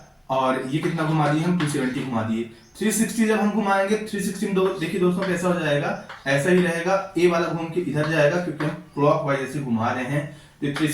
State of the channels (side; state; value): both; identical; correlation 1.00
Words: और ये कितना घुमा दिए हम, 270 घुमा दिए। 360 जब हम घुमाएंगे, 360 में देखिए दोस्तों कैसा हो जाएगा, ऐसा ही रहेगा। ए वाला घूम के इधर जाएगा क्योंकि हम क्लॉकवाइज ऐसे घुमा रहे हैं, तो